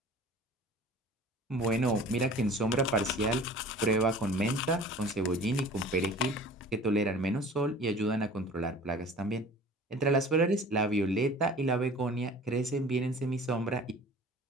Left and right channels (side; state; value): both; normal; correlation 0.44